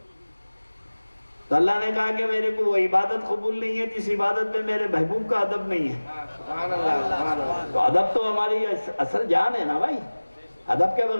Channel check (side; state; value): both; inverted; correlation -1.00